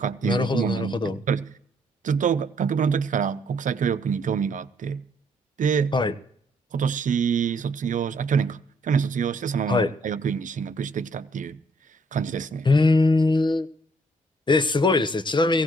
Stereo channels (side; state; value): both; normal; correlation 0.67